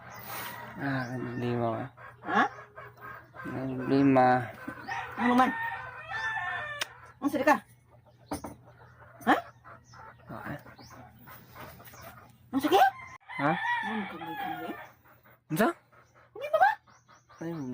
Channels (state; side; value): identical; both; correlation 1.00